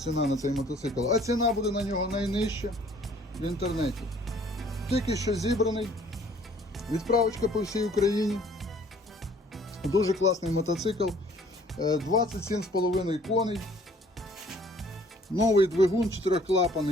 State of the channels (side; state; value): both; normal; correlation 0.57